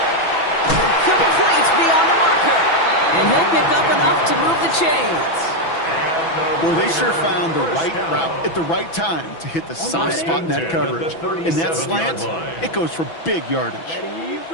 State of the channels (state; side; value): late; right; 6.0 ms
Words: Complete beyond the marker. And he'll pick up enough to move the chains. Boy, they sure found the right route at the right time to hit the soft spot in that coverage. In that slant, it goes for big yardage. Ready,